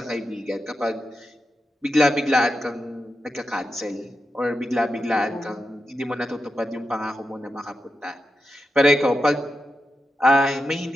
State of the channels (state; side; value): normal; both; correlation 0.89